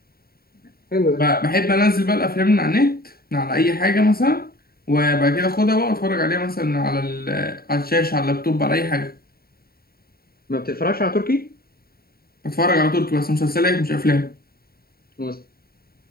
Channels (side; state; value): right; late; 0.44 ms